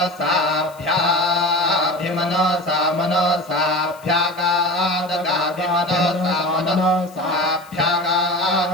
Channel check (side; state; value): left; noise; hiss, 24 dB below the sound